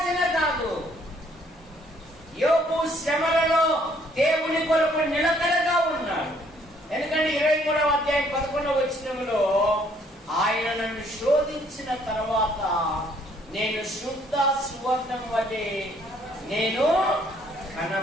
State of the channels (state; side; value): normal; both; correlation 0.64